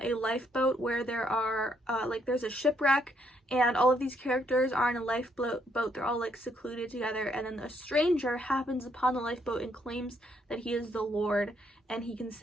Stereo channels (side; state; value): both; normal; correlation 0.72